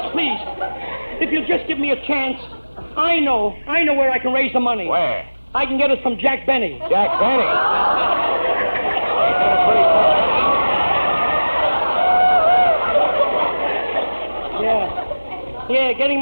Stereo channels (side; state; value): both; inverted; correlation -1.00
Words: please. If you'll just give me a chance, I know where I can raise the money. Where? I can get it from Jack Benny. Jack Benny? Yeah, getting